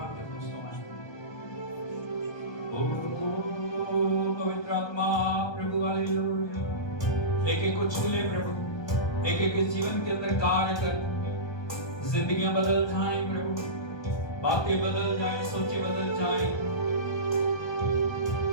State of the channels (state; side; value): late; right; 1.3 ms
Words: के ओ पवित्र आत्मा प्रभु, हालेलुया। एक एक को छू ले प्रभु, एक एक के जीवन के अंदर कार्य कर। जिंदगियां बदल जाएं प्रभु, बातें बदल जाएं, सोचें बदल जाएं।